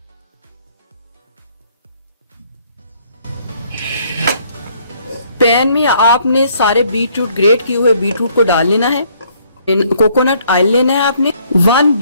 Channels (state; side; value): inverted; both; correlation -0.65